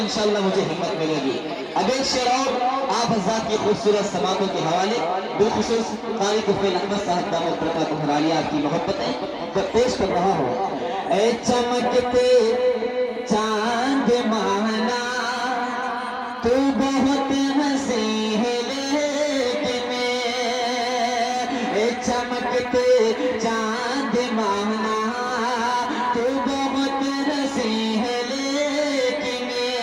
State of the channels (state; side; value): identical; both; correlation 1.00